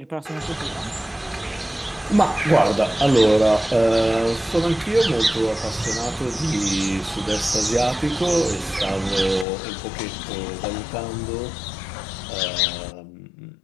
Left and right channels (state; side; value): drops out; right; at 9.5 s